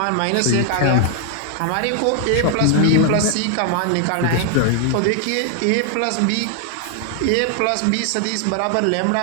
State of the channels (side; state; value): both; different; correlation 0.00